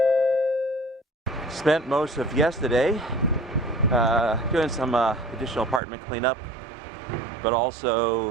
Spent most of yesterday doing some additional apartment cleanup, but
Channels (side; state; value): left; drops out; at 5.8 s